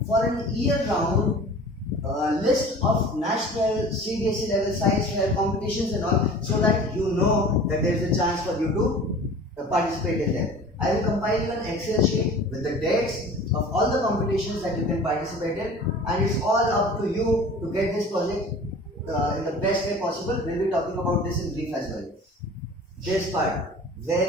for an year-round list of national CBSE level science fair competitions and all, so that you know that there is a chance for you to participate in them. I will compile you an Excel sheet with the dates of all the competitions that you can participate in, and it's all up to you to get this project in the best way possible. We'll be talking about this in brief as well. This part,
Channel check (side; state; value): both; normal; correlation 0.42